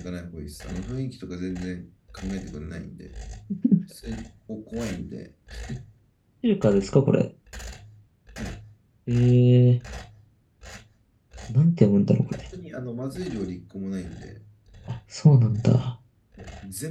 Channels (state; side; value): identical; both; correlation 1.00